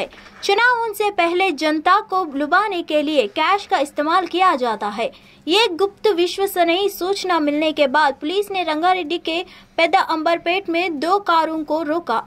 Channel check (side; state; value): both; identical; correlation 1.00